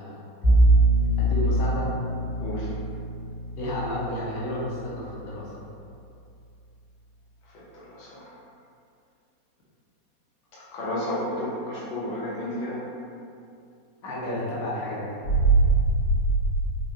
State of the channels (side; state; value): right; late; 4.2 ms